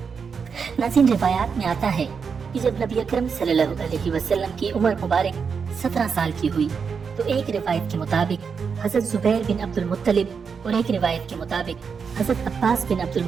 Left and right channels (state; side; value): quieter; left; 6.0 dB